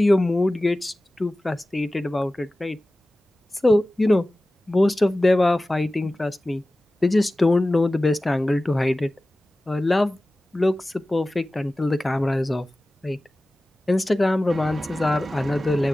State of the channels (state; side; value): normal; both; correlation 0.96